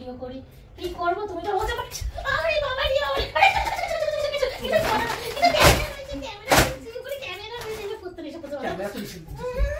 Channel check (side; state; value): both; identical; correlation 1.00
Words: করি। কি করব? তুমি তো বলতে পারছো। আরে বাবা রে বাবা, ক্যামেরা করতে এসে করতে। ক্যামেরা তো